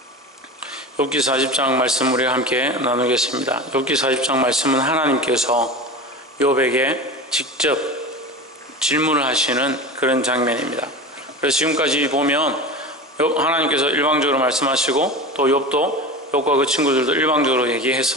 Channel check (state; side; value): normal; both; correlation 0.29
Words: 40장 말씀 우리가 함께 나누겠습니다. 욥기 40장 말씀은 하나님께서 욥에게 직접 질문을 하시는 그런 장면입니다. 그래서 지금까지 보면 하나님께서 일방적으로 말씀하시고 또 욥과 그 친구들도 일방적으로